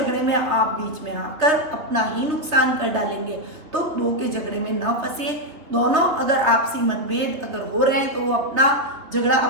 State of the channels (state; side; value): late; left; 3.5 ms